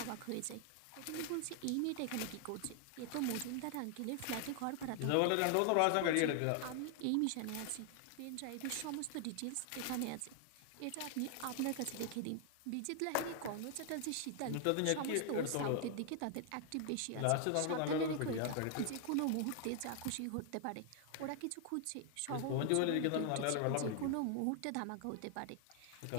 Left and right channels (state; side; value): different; both; correlation 0.00